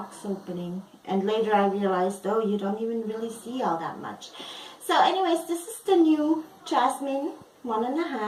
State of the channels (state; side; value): identical; both; correlation 1.00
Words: opening. And later I realized, oh, you don't even really see all that much. So anyways, this is the new Jasmine